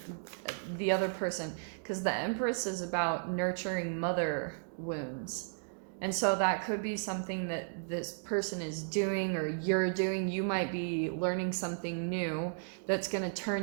the other person, because the Empress is about nurturing mother wounds. And so that could be something that this person is doing or you're doing. You might be learning something new that's going to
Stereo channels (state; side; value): silent; left; digital silence